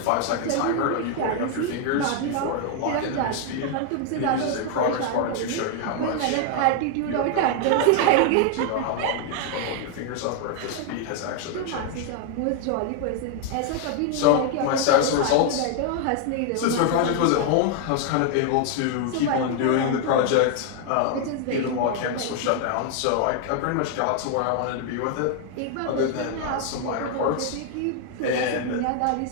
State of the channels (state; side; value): different; both; correlation 0.00